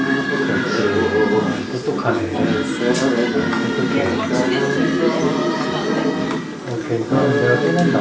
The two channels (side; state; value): both; identical; correlation 1.00